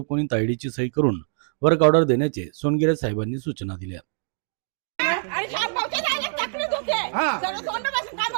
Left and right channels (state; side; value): silent; left; digital silence